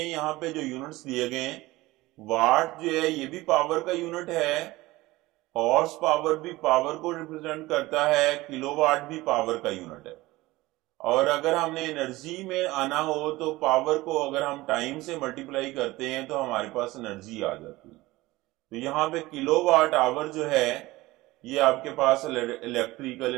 पे जो यूनिट्स दिए गए हैं, वाट जो है ये भी पावर का यूनिट है, हॉर्स पावर भी पावर को रिप्रेजेंट करता है, किलोवाट भी पावर का यूनिट है। और अगर हमने एनर्जी में आना हो तो पावर को अगर हम टाइम से मल्टीप्लाई करते हैं तो हमारे पास एनर्जी आ जाती है। तो यहाँ पे किलोवाट आवर जो है ये आपके पास इलेक्ट्रिकल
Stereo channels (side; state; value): left; quieter; 19.3 dB